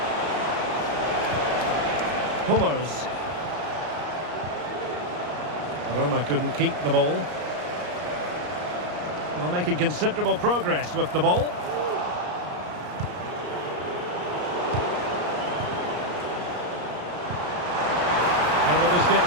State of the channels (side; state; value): left; late; 33 ms